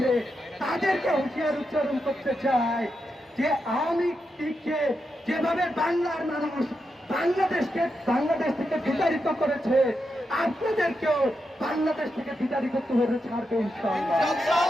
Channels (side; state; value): both; normal; correlation 0.86